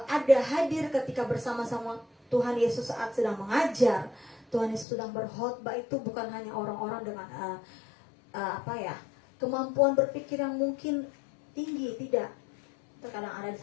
ada hadir ketika bersama-sama Tuhan Yesus saat sedang mengajar, Tuhan Yesus sedang berkhotbah itu bukan hanya orang-orang dengan kemampuan berpikir yang mungkin tinggi, tidak. Terkadang ada di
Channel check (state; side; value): drops out; right; at 4.9 s